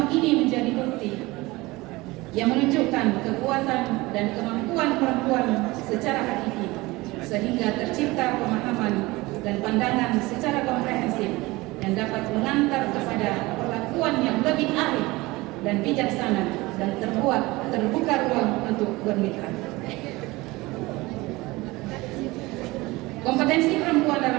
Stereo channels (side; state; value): left; quieter; 21.3 dB